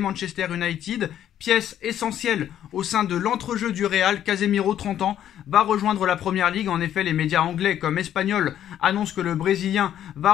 United. Pièce essentielle au sein de l'entrejeu du Real, Casemiro, 30 ans, va rejoindre la Première Ligue. En effet, les médias anglais comme espagnols annoncent que le Brésilien va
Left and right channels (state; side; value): quieter; right; 10.8 dB